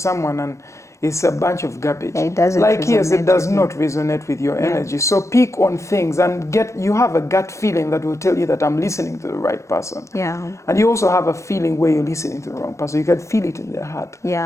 and it's a bunch of garbage. Yeah, it doesn't like, yes, it resonate does not resonate with your energy. So pick on things and you have a gut feeling that will tell you that I'm listening to the right person. Yeah. And you also have a feeling where you're listening to the wrong person. You can feel it in their heart.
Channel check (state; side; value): late; right; 0.14 ms